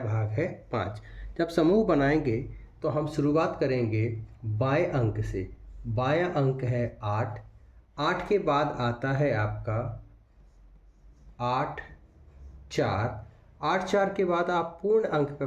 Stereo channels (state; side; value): identical; both; correlation 1.00